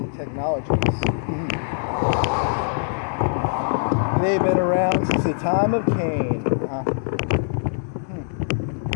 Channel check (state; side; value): silent; right; 64 dB below the other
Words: technologies. They've been around since the time of Cain.